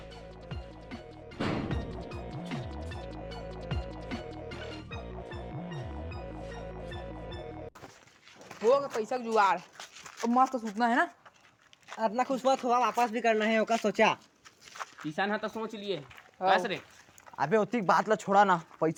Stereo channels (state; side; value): identical; both; correlation 1.00